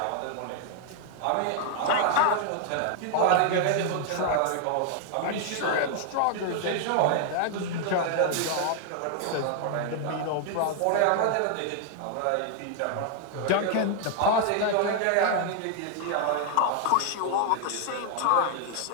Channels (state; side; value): different; both; correlation 0.00